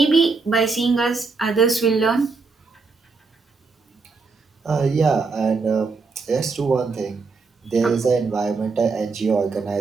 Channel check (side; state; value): left; quieter; 4.4 dB